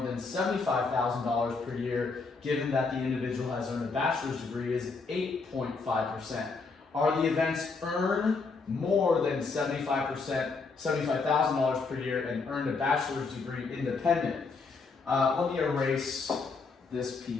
than $75,000 per year, given that the individual has earned a bachelor's degree, is 8.5%. Are the events earn more than $75,000 per year and earned a bachelor's degree independent? Let me erase this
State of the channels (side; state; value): right; quieter; 4.4 dB